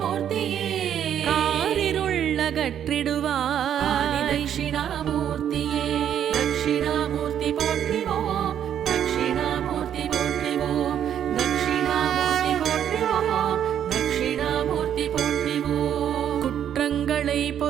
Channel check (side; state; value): left; quieter; 9.6 dB